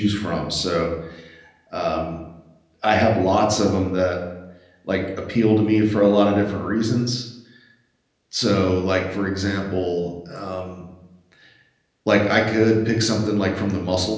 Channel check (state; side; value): identical; both; correlation 1.00